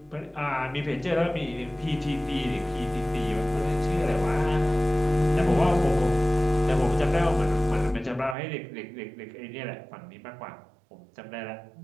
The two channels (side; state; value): left; drops out; at 8.3 s